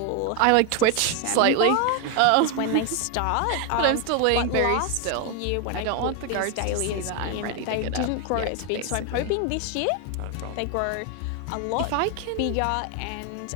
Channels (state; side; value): different; both; correlation 0.01